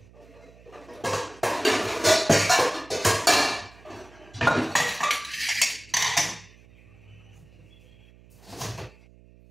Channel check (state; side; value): noise; right; hum, 25 dB below the sound